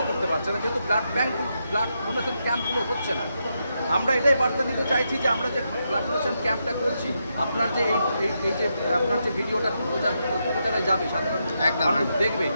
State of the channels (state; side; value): inverted; both; correlation -0.83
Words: করতে পারছে না, যেহেতু ব্লাড ডোনেশন ক্যাম্পগুলো হচ্ছে না। আমরা এটাই বার্তা দিতে চাইছি যে আমরা যে ব্লাড ডোনেশন ক্যাম্পটা করছি, আপনার যে এই যে আপনার যে ভিডিওটা প্রচারে যাবে, সাধারণ মানুষ দেখবে,